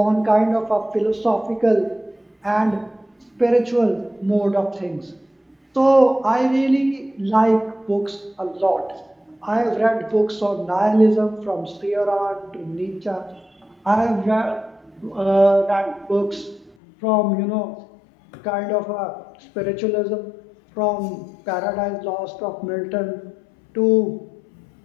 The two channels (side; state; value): right; drops out; at 16.8 s